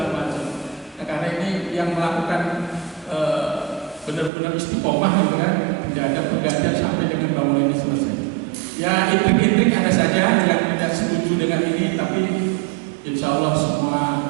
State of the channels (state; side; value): drops out; left; at 4.3 s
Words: macam. Nah, karena ini yang melakukan benar-benar istiqomah gitu kan, tidak ada pergantian sampai dengan bangunan ini selesai. Ya, intrik-intrik ada saja yang tidak setuju dengan ini, tapi insya Allah semua